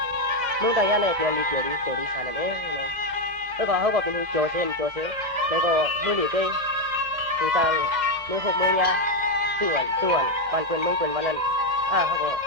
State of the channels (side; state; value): left; late; 1.8 ms